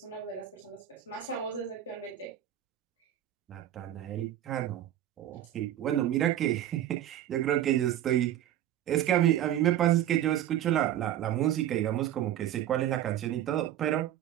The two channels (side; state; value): left; quieter; 11.9 dB